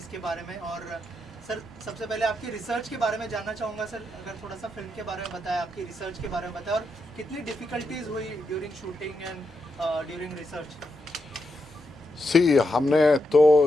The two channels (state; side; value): normal; both; correlation 0.84